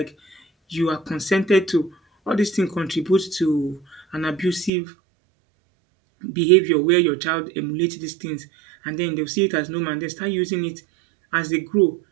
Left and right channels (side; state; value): left; drops out; at 4.7 s